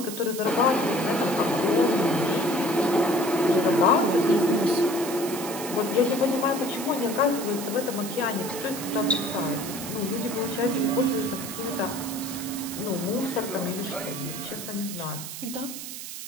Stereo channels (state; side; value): noise; right; hiss, 9 dB below the sound